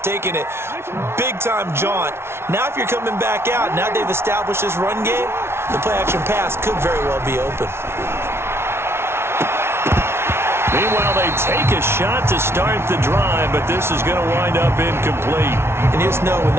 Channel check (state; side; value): late; left; 0.12 ms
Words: taking it big-time jaunt? Now if you're coming back out, now they've established this run game, the play-action pass could very well be open. Meanwhile, they take a shot to start the drive, but this is going to wind up incomplete. And you just know when